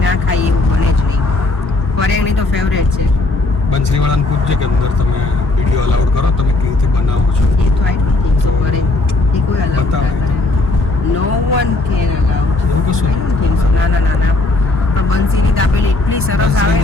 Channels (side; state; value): right; quieter; 3.0 dB